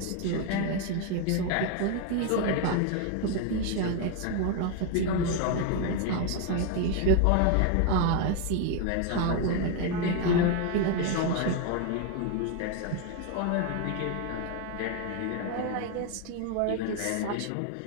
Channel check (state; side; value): different; both; correlation 0.01